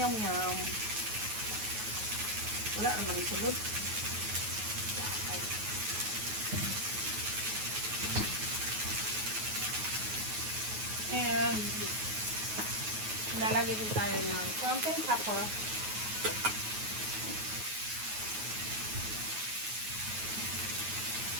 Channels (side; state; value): left; late; 9.4 ms